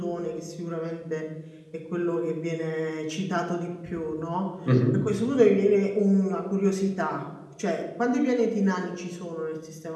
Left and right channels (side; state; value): both; identical; correlation 1.00